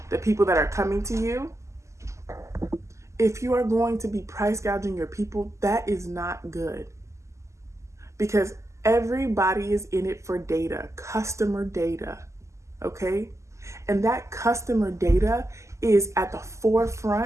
the people that are coming to you, if you are going to be price gouging your people, that is not good. Because everybody is in it for data, customer data, okay? And that customer data is at the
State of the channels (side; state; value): left; late; 0.14 ms